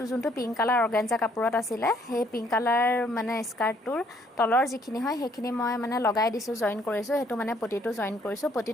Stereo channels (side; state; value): both; normal; correlation 0.65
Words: যোনটো পিংক কালাৰ অৰ্গেঞ্জা কাপোৰত আছিলে, সেই পিংক কালাৰ মানে স্কাৰ্টটোৰ তলৰ যিখিনি হয় সেইখিনি মই মানে লগাই দিছোঁ, জইন কৰিছোঁ। সেইটো মানে পটিটো জইন কৰিছোঁ।